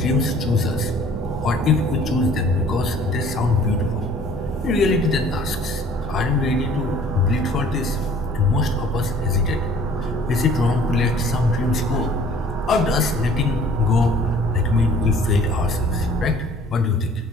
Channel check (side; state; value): both; normal; correlation 0.53